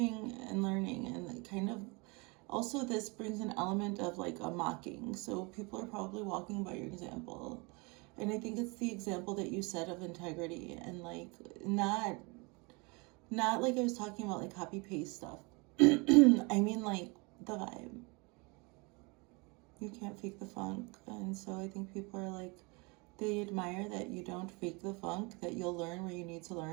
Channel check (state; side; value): quieter; left; 28.7 dB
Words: and learning, and kind of also this brings an element of like a mocking. So people are probably walking by your example. And I think it's the example that you set of integrity, and like not like I was talking about like copy paste stuff. I mean like the vibe. You can't fake the funk. And so I think people are like, they admire that you don't fake the funk, that you'll learn where you need to